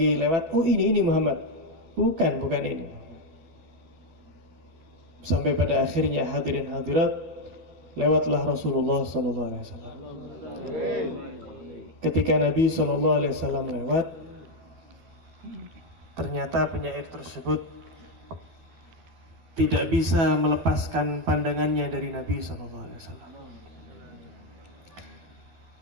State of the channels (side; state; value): left; late; 12 ms